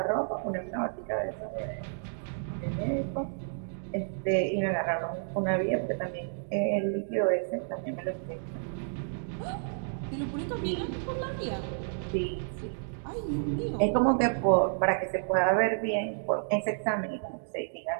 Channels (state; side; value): silent; left; digital silence